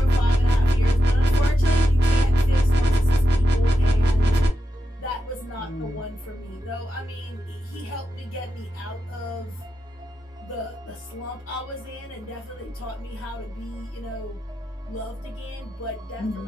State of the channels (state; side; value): normal; both; correlation 0.88